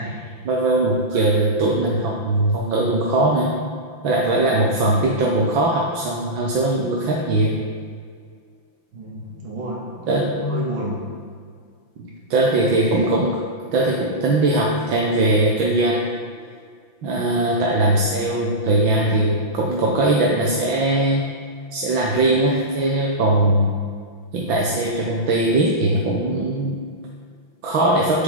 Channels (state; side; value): late; left; 5.9 ms